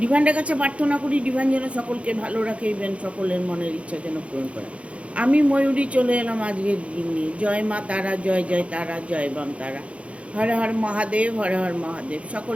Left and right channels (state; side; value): late; left; 0.062 ms